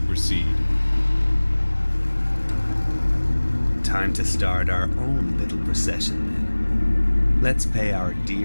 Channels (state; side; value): inverted; both; correlation -1.00